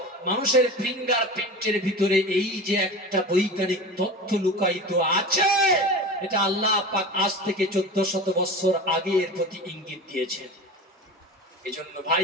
মানুষের ফিঙ্গার প্রিন্টের ভিতরে এই যে একটা বৈজ্ঞানিক তথ্য লুকায়িত আছে, এটা আল্লাহ পাক আজ থেকে 1400 বছর আগে এর প্রতি ইঙ্গিত দিয়েছেন। এজন্য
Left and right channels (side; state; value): both; normal; correlation 0.32